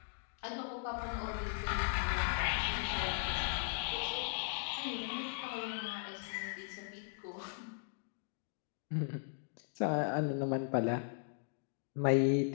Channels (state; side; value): silent; right; digital silence